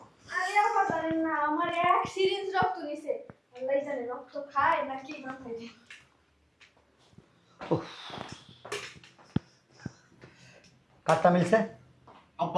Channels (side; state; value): both; identical; correlation 1.00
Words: আরে আমার জানেন না, আমার এক সিরিঞ্জ রক্ত নিছে। আল্লাহই জানে রক্ত খায় নাকি না খায়। কারটা মিলছে?